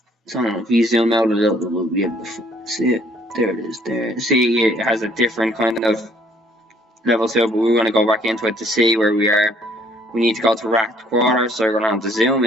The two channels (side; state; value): both; normal; correlation 0.62